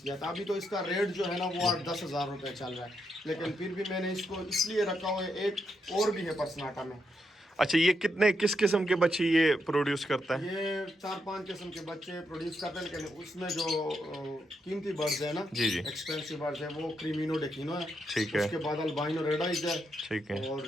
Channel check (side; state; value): both; normal; correlation 0.81